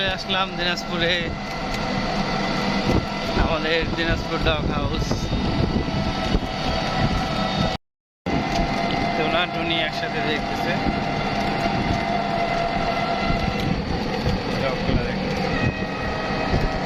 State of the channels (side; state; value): both; identical; correlation 1.00